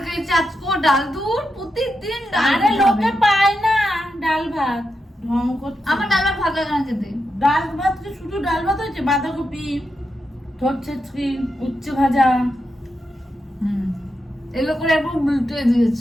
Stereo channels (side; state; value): both; normal; correlation 0.86